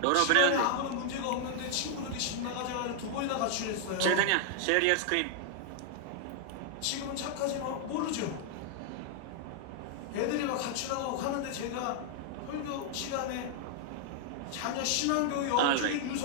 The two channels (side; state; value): both; different; correlation 0.00